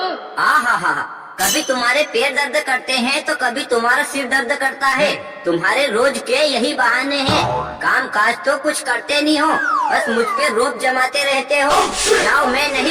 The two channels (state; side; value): identical; both; correlation 1.00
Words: हा, कभी तुम्हारे पैर दर्द करते हैं तो कभी तुम्हारा सिर दर्द करता है। तुम्हारे रोज के यही बहाने हैं। काम काज तो कुछ करते नहीं हो, बस मुझ पे रोब जमाते रहते हो। जाओ, मैं